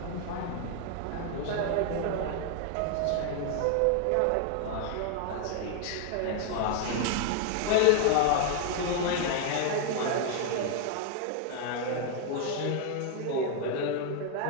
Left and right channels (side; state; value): both; different; correlation 0.00